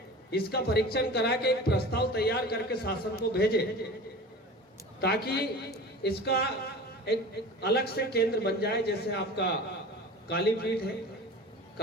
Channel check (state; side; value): normal; both; correlation 0.36